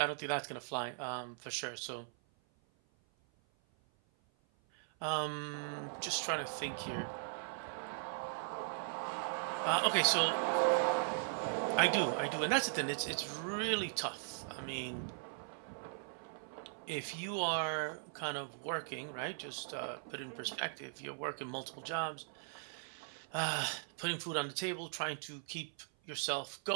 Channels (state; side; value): silent; left; 52 dB below the other